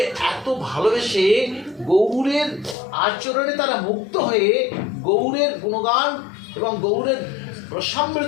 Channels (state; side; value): drops out; right; at 2.8 s